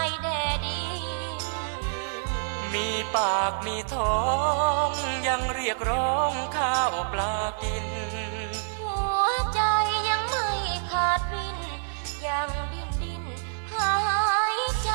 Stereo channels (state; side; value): silent; left; digital silence